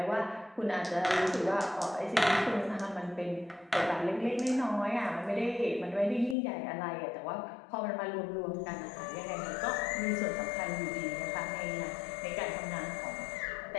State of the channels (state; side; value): drops out; right; at 6.4 s